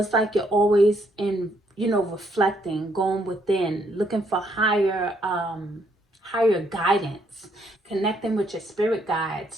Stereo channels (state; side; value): normal; both; correlation 0.71